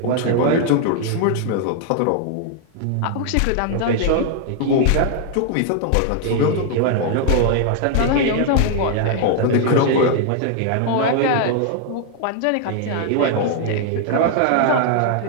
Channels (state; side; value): different; both; correlation 0.00